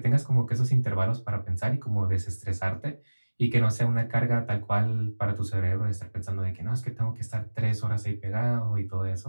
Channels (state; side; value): inverted; both; correlation -1.00